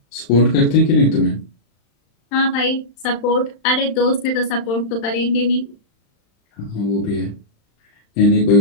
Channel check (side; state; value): right; late; 35 ms